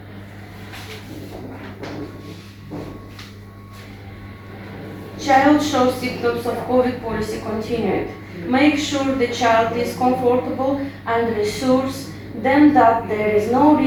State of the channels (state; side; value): identical; both; correlation 1.00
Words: Child shows symptoms of COVID policy continued. Make sure the child is comfortable and reassures them that there is no